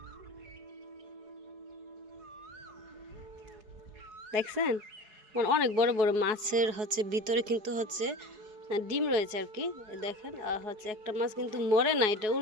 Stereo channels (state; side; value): late; left; 4.7 ms